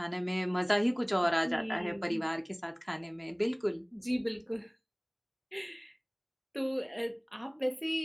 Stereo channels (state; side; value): identical; both; correlation 1.00